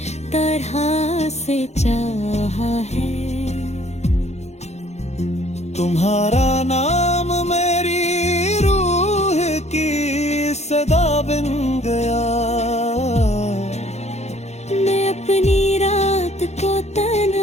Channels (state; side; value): late; right; 0.32 ms